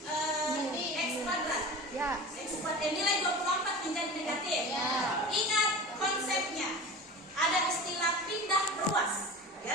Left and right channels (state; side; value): normal; both; correlation 0.34